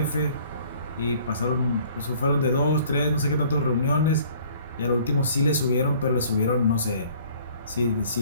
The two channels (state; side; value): inverted; both; correlation -0.55